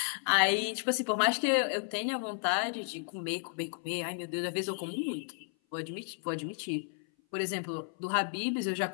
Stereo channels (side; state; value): right; silent; 55 dB below the other